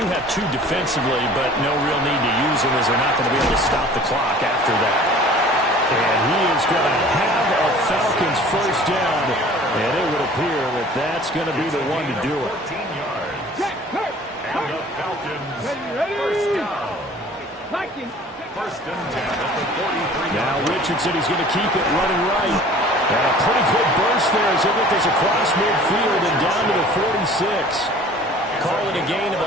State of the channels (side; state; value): both; normal; correlation 0.48